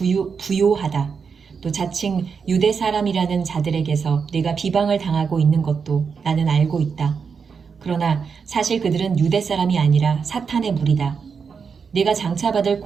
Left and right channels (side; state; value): left; quieter; 5.9 dB